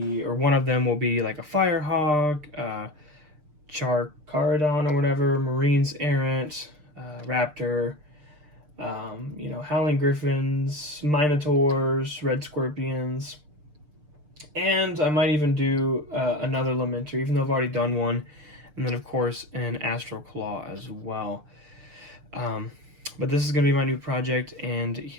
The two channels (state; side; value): late; left; 6.7 ms